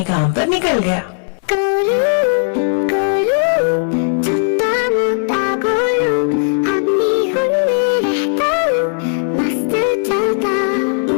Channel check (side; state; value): right; silent; digital silence